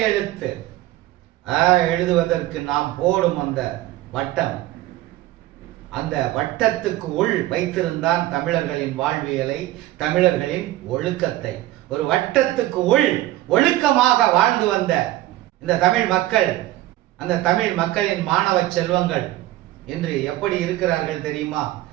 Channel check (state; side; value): quieter; left; 15.8 dB